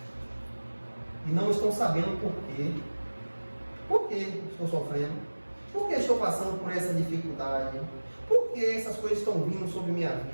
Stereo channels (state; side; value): inverted; both; correlation -1.00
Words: E não estão sabendo por quê. Por que estou sofrendo? Por que estou passando por essa dificuldade? Por que essas coisas estão vindo sobre minha